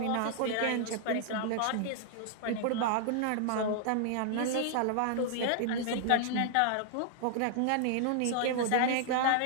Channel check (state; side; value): different; both; correlation -0.01